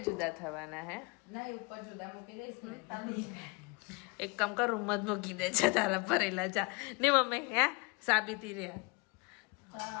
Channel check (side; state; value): right; quieter; 28.2 dB